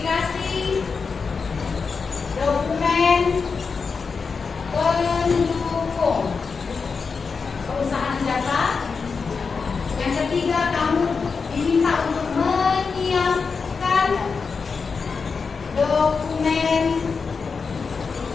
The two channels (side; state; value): right; quieter; 5.1 dB